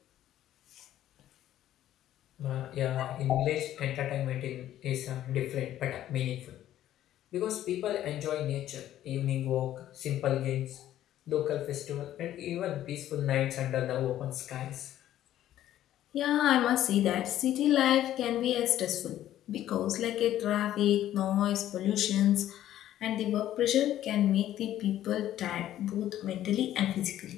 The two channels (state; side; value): quieter; right; 12.5 dB